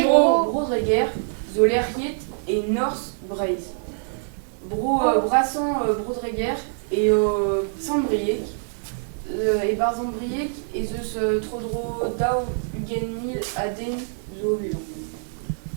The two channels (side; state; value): left; silent; digital silence